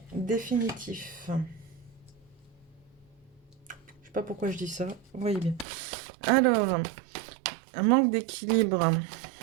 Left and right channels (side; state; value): left; drops out; at 5.7 s